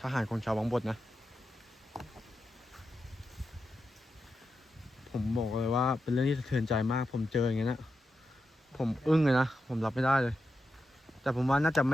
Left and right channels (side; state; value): both; normal; correlation 0.88